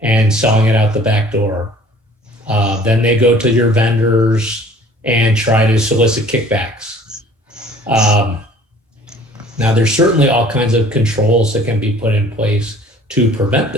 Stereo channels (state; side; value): normal; both; correlation 0.51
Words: selling it out the back door. Then they go to your vendors and try to solicit kickbacks. Now, there's certainly all kinds of controls that can be put in place to prevent